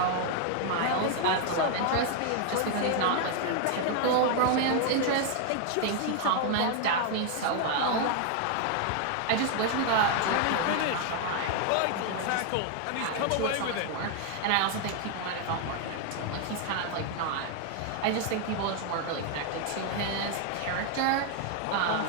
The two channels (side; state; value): both; different; correlation 0.00